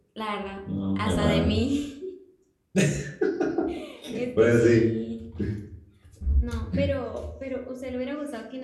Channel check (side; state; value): both; identical; correlation 1.00